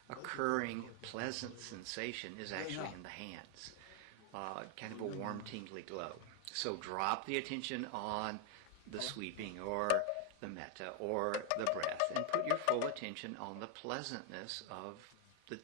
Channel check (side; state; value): both; different; correlation 0.00